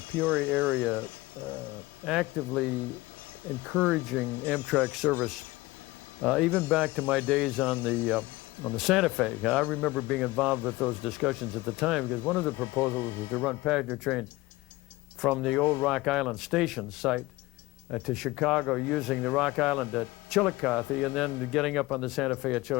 Peoria area actively encouraging Amtrak service, even back to my days on the Santa Fe. I remember being involved with those discussions at the time, because one of the proposals was to run passenger trains from the old Rock Island station site to Chicago, using the Rock Island at Chillicothe, and then getting up on the Santa Fe at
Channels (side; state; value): right; quieter; 20.1 dB